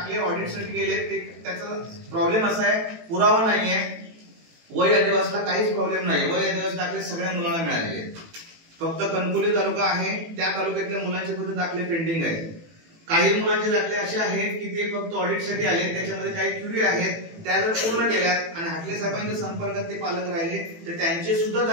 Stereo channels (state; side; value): late; left; 18 ms